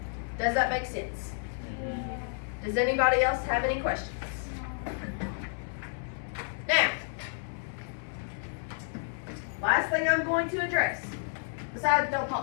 Does that make sense? Does anybody else have any questions? Now, last thing I'm going to address, besides don't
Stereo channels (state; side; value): silent; right; 57 dB below the other